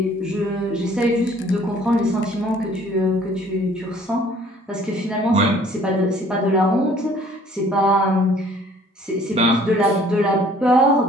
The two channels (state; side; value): normal; both; correlation 0.56